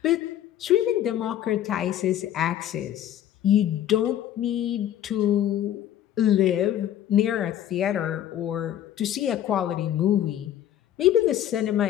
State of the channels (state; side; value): quieter; right; 11.3 dB